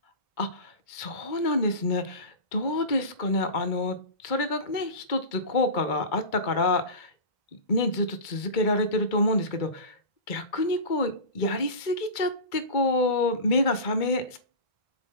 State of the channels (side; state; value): right; late; 2.2 ms